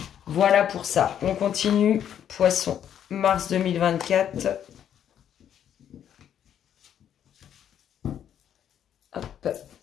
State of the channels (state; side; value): quieter; right; 9.7 dB